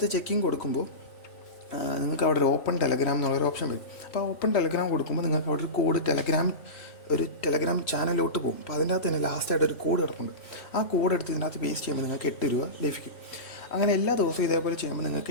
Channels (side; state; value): right; late; 3.9 ms